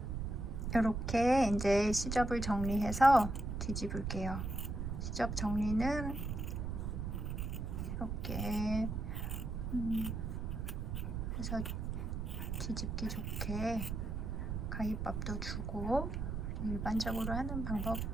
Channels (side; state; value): right; noise; rumble, 3 dB below the sound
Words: 이렇게 이제 시접을 정리해서 뒤집을게요. 시접 정리는 이렇게 해서 뒤집기 좋게 가위밥도 주고 일반적으로 하는 방법